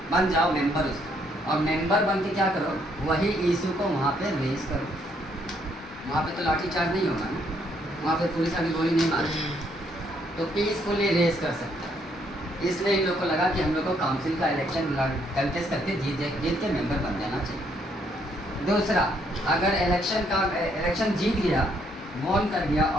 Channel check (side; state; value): both; normal; correlation 0.70